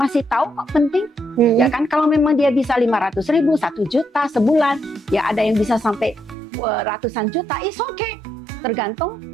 tahu kok penting. Ya kan, kalau memang dia bisa 500.000, 1 juta sebulan, ya ada yang bisa sampai ratusan juta, is okay. Tergantung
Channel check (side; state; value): left; drops out; at 6.4 s